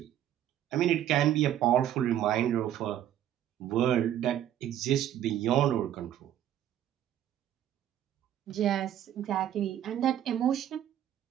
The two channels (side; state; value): left; quieter; 11.2 dB